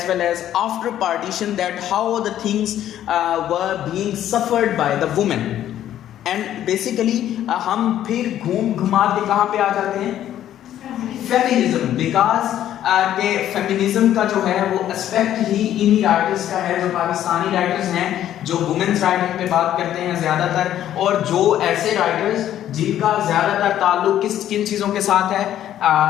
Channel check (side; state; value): right; quieter; 11.6 dB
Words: well as after partition, that how the things were being suffered by the women. And basically हम फिर घूम घुमा के कहाँ पे आ जाते हैं, feminism. Because के फेमिनिज्म का जो है वो एस्पेक्ट ही इन्हीं राइटर्स का है जो पाकिस्तानी राइटर्स हैं, जो वुमेन्स राइटिंग पे बात करते हैं ज़्यादातर, और जो ऐसे राइटर्स जिनका ज़्यादातर ताल्लुक किन चीज़ों के साथ है,